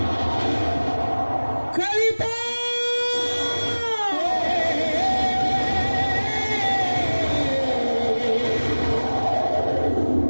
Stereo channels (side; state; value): both; inverted; correlation -1.00